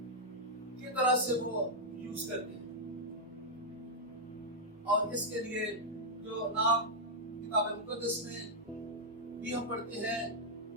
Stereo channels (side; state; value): both; normal; correlation -0.05